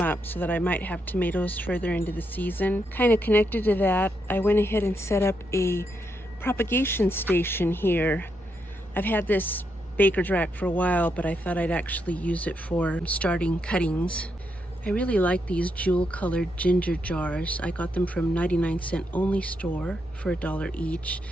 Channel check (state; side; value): normal; both; correlation 0.80